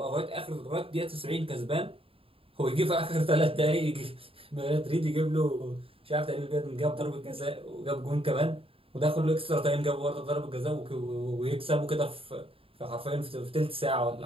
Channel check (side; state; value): left; late; 0.27 ms